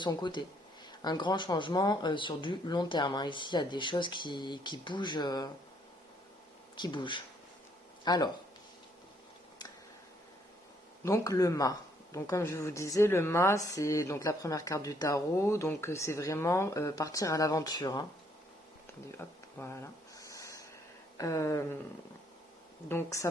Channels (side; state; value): both; normal; correlation 0.68